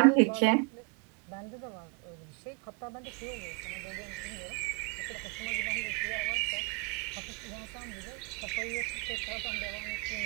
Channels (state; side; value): quieter; left; 30.8 dB